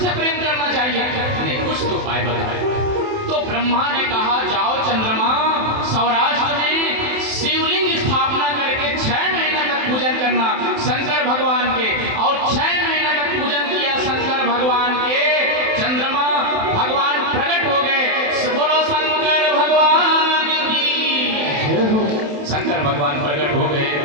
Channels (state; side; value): late; left; 27 ms